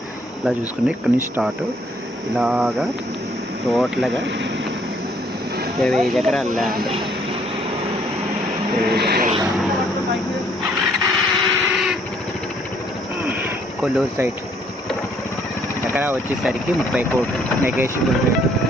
ఇలా చూసుకుంటే ఇక్కడ నుంచి స్టార్ట్ ఇలాగా టోటల్గా 25 ఎకరాల ల్యాండ్. కొల్లూరు సైట్ ఎకరా వచ్చేసరికి 30 కోట్లు negotiable rate.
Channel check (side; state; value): both; normal; correlation 0.65